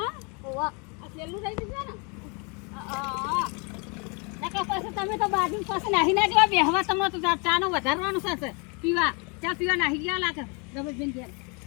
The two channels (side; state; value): right; quieter; 32.9 dB